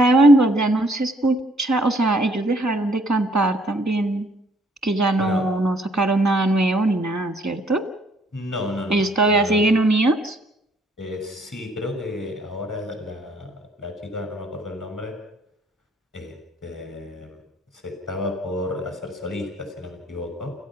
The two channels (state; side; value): normal; both; correlation 0.64